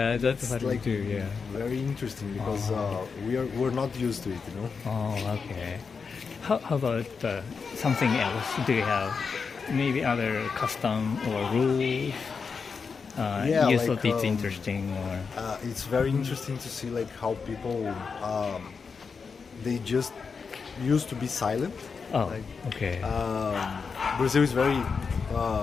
that's what we like do. Yeah. Very interesting because we're not used to it, you know. Oh, okay. How about something else? Do you have maybe other custom or rules? You thought it's interesting, or it's very interesting to see how people they just used to be silent. Okay. Brazil is very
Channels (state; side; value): quieter; right; 5.4 dB